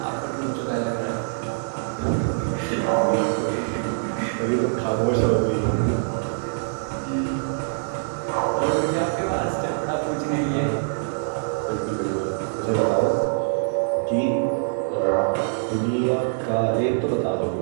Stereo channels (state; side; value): silent; left; digital silence